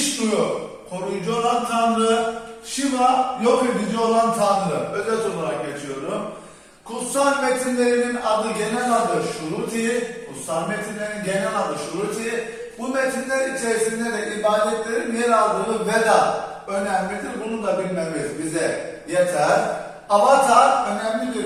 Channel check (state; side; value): identical; both; correlation 1.00